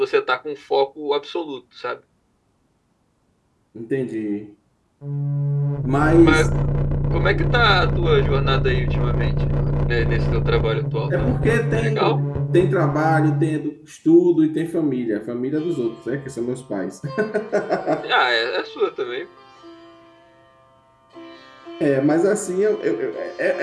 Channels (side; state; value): both; identical; correlation 1.00